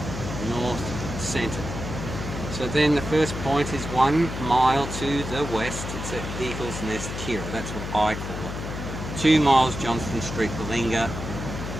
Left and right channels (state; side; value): noise; left; hum, 6 dB below the sound